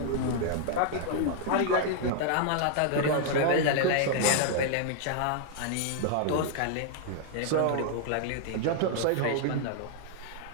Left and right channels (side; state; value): both; different; correlation -0.01